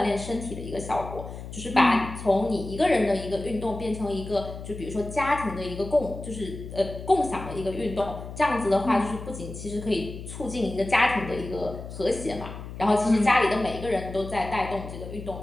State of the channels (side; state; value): left; noise; hum, 11 dB below the sound